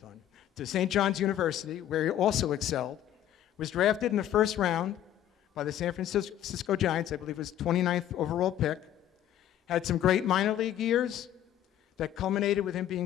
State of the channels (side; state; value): right; quieter; 11.6 dB